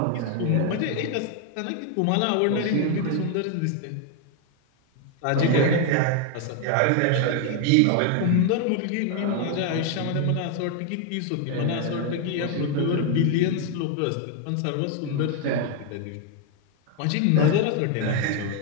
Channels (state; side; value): different; both; correlation 0.01